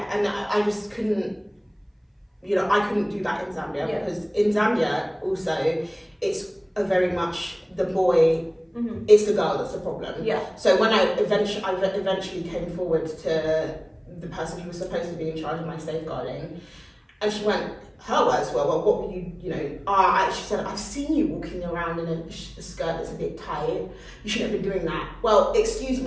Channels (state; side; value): identical; both; correlation 1.00